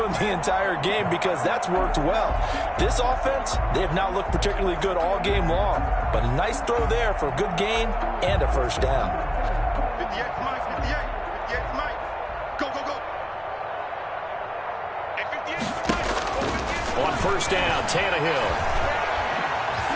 the entire game, because that's worked well. This offense, they have not looked particularly good all game long, but a nice throw there for a good gain and a first down. 58's Mike. 58's Mike. Go, go, go. Hey, 58's Mike. On first down, Tannehill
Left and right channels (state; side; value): identical; both; correlation 1.00